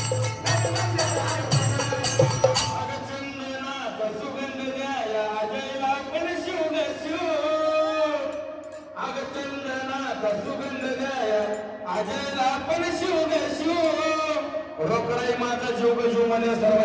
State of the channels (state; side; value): identical; both; correlation 1.00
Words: रोकडाई माझा जीव जीव मध्ये